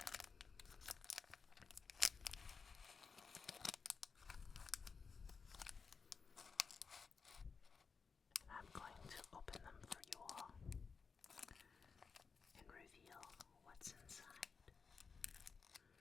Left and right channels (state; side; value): quieter; right; 5.3 dB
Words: And I'm going to open them for you all and reveal what's inside.